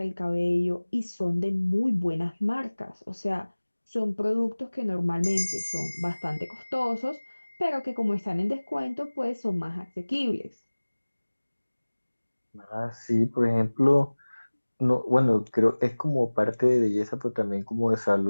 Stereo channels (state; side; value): inverted; both; correlation -1.00